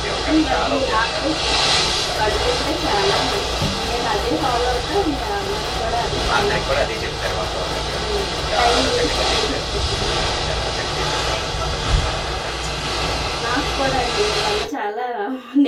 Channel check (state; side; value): identical; both; correlation 1.00